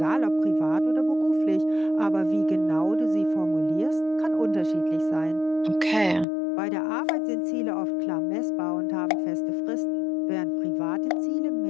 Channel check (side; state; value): right; drops out; at 6.2 s